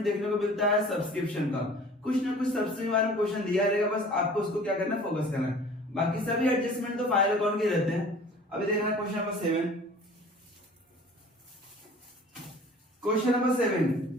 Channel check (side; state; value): both; normal; correlation 0.47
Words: देखने को मिलता है सब्सक्रिप्शन का। कुछ ना कुछ सब्सक्रिप्शन वाला क्वेश्चन दिया रहेगा, बस आपको उसको क्या करना है, फोकस करना है। बाकी सभी एडजस्टमेंट तो फाइनल अकाउंट के रहते हैं। अभी देखना क्वेश्चन नंबर 7। क्वेश्चन नंबर